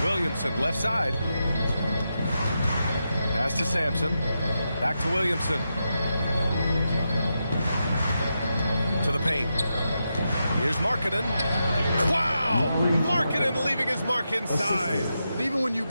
Williamson left side. Pass to Sampson. Back to Williamson. To the paint. Here's Markkanen. Wow! Markkanen leaving his mark inside. And even when you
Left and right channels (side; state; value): both; inverted; correlation -0.87